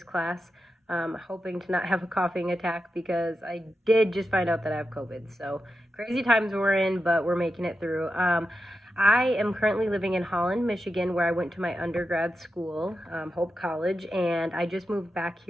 class. Hoping to not have a coughing attack because I did just find out that I have COVID. So crazy times we're in, but we're making it through. I am currently living in Holland, Michigan, where I went to my undergrad school, Hope College, and I just moved back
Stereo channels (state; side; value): normal; both; correlation 0.89